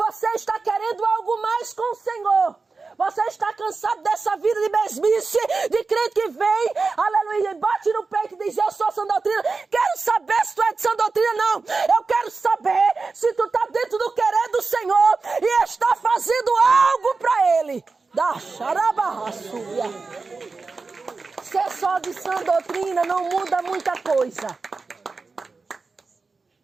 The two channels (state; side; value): quieter; left; 4.2 dB